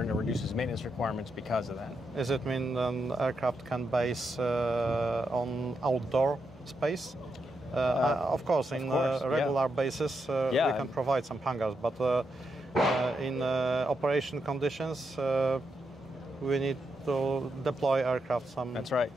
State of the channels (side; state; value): both; normal; correlation 0.83